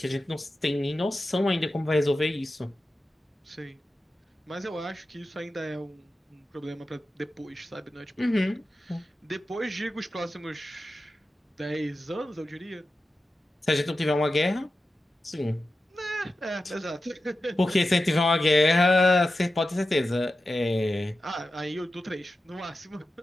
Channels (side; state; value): both; normal; correlation 0.92